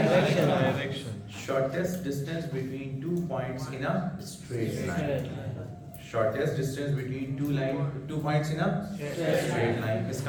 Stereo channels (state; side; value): identical; both; correlation 1.00